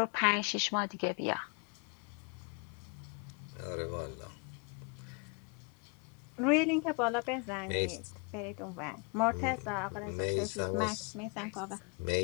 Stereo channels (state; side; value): quieter; right; 34.8 dB